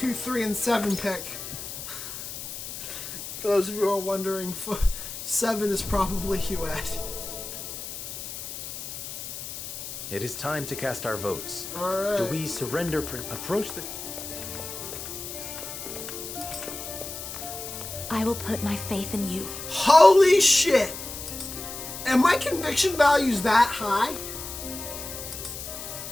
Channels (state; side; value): noise; left; hiss, 9 dB below the sound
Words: 3, and 7 pick. For those of you who are wondering, 7 is probably Huette. It is time to cast our votes. Alright. Do we surrender Prince? Approach this. I will put my faith in you. Holy shit! And my conviction value's that high?